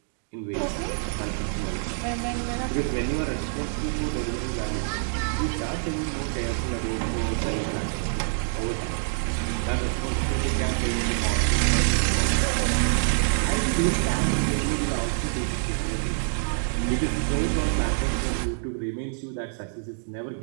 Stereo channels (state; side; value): silent; left; digital silence